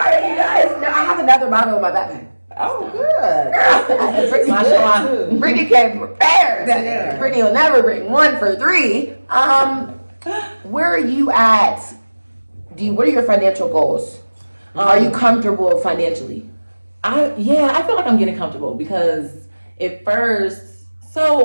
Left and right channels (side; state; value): both; inverted; correlation -1.00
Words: you guys. No, I have another bottle in my backpack. Oh, good. Mashallah. Brittany came prepared. Brittany will never bring one for three. Where are you at? What are your financial goals? Are you comfortable financially? I feel like I'm getting comfortable because at first,